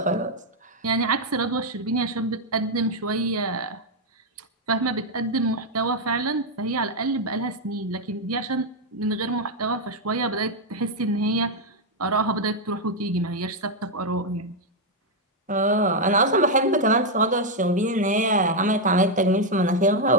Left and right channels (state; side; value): normal; both; correlation 0.01